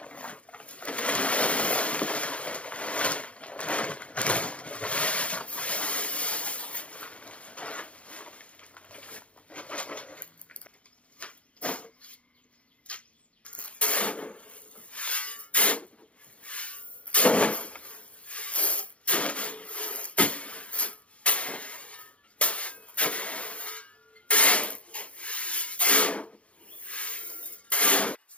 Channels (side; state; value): right; late; 0.062 ms